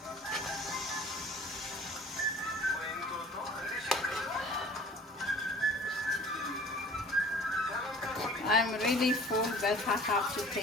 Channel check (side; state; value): both; normal; correlation 0.48